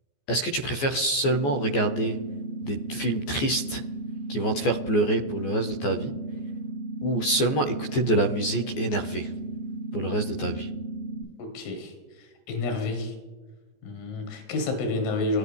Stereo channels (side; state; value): right; late; 14 ms